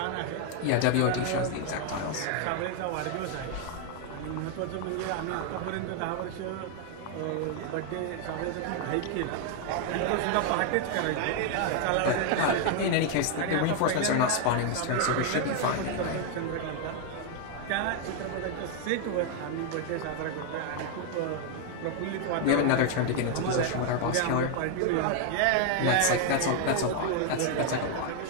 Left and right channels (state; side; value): different; both; correlation 0.00